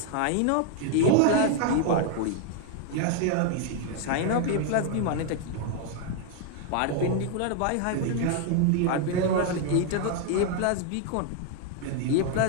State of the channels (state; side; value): different; both; correlation 0.00